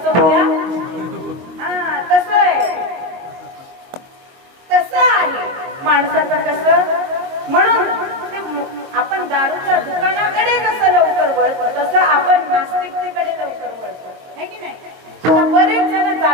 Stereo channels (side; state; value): left; late; 23 ms